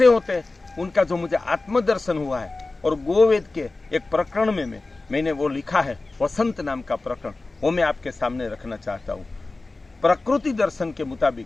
होते हैं उनका जो मुझे आत्मदर्शन हुआ है, और गोवेद के एक प्रकरण में मैंने वो लिखा है, वसंत नाम का प्रकरण, वो मैं आपके सामने रखना चाहता हूँ। प्रकृति दर्शन के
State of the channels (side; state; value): right; quieter; 3.3 dB